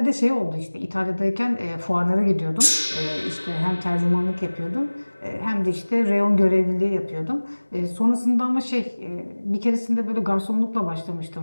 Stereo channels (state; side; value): inverted; both; correlation -1.00